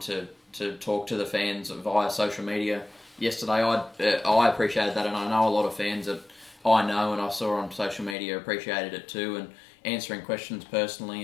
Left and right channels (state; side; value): drops out; right; at 8.2 s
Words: talk to the fans via social media yesterday. I appreciated that, and I know a lot of fans that I know and I saw on social media appreciated it too, and answering questions